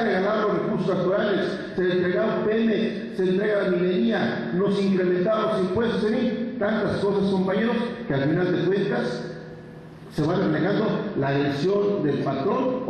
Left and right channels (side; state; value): both; identical; correlation 1.00